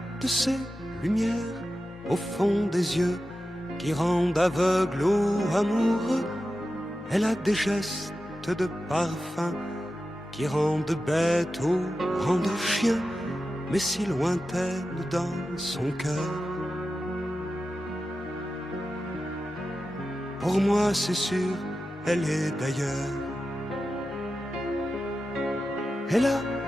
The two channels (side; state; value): both; normal; correlation 0.92